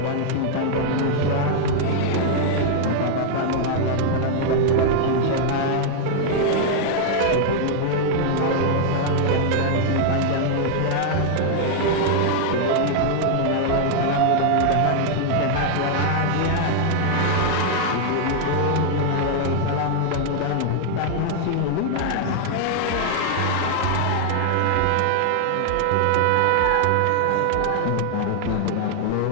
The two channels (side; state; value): both; different; correlation 0.00